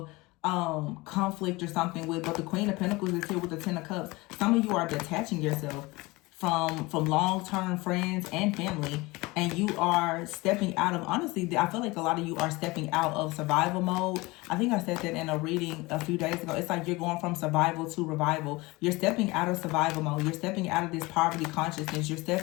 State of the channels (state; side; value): quieter; right; 22.6 dB